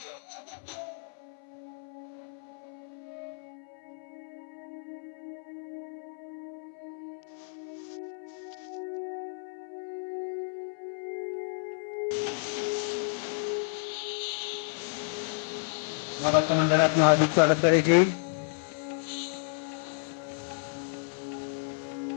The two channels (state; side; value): silent; right; 57 dB below the other